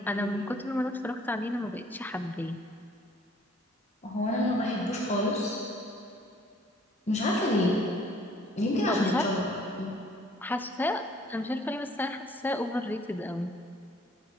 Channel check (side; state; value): both; normal; correlation 0.58